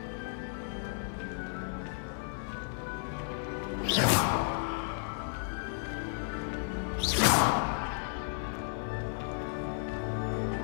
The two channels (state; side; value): silent; right; 55 dB below the other